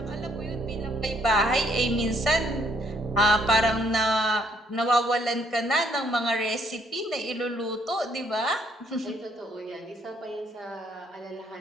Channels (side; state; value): both; normal; correlation 0.68